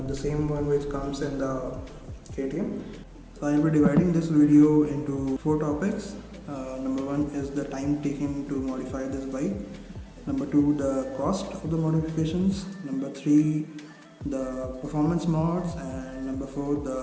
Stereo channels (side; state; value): both; identical; correlation 1.00